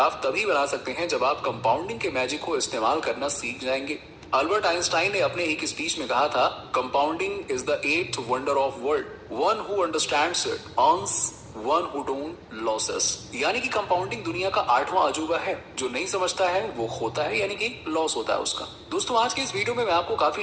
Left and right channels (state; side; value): identical; both; correlation 1.00